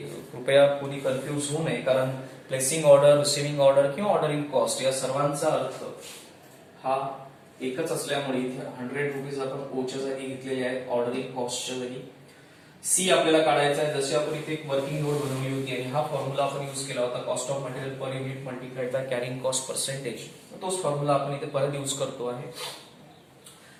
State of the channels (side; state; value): both; identical; correlation 1.00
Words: कृपया कोणी कन्फ्यूज होऊ नये, कारण प्लेसिंग ऑर्डर, रिसिव्हिंग ऑर्डर किंवा ऑर्डरिंग कॉस्ट या सर्वांचा अर्थ हा एकच असल्यामुळे इथे ₹100 आपण ओच्या जागी घेतलेले आहेत ऑर्डरिंग कॉस्टच्या जागी. सी आपल्याला काढायचा आहे. जशी आपण इथे एक वर्किंग नोट बनवली होती आणि हा फॉर्म्युला आपण यूज केला होता cost of material per unit multiplied by carrying cost percentage, तोच फॉर्म्युला आपण इथे परत यूज करतो आहे.